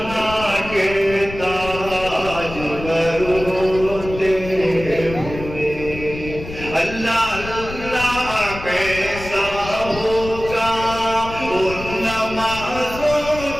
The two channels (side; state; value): left; noise; rumble, 11 dB below the sound